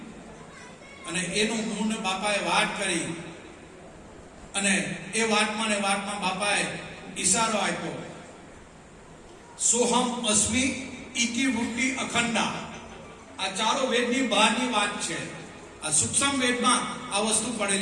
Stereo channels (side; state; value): both; identical; correlation 1.00